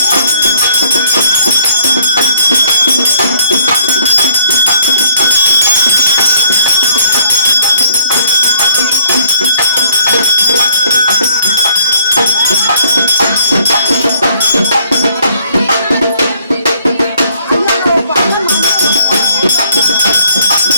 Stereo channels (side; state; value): both; inverted; correlation -0.63